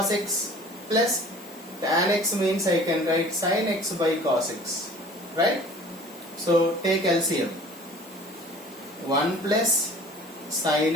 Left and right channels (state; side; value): normal; both; correlation 0.47